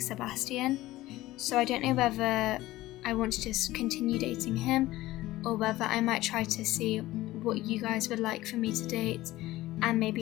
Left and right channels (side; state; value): right; quieter; 16.9 dB